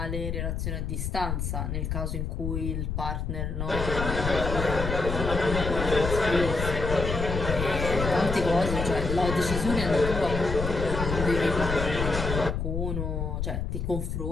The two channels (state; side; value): noise; left; rumble, 3 dB below the sound